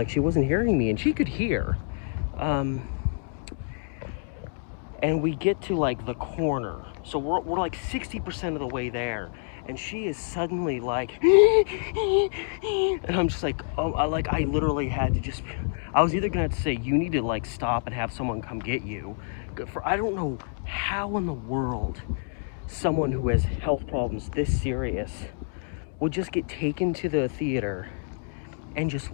she wasn't hearing me, and she could hear. And we get to like the corner, so we're like 60% of the way there, and she is suddenly like and I'm just like, oh, I literally had to just, I was either gonna have to say, you need to like stop and have someone come get you, for I don't know how in the world someone who has health problems this serious would just get taken to the theater and just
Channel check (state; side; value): silent; right; digital silence